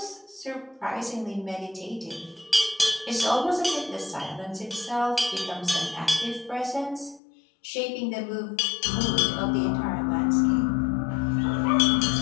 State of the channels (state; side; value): drops out; right; at 7.2 s